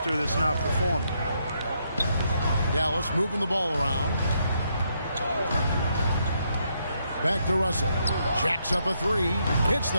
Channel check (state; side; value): inverted; both; correlation -0.77